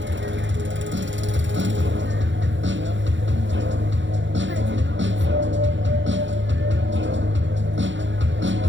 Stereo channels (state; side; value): late; left; 0.54 ms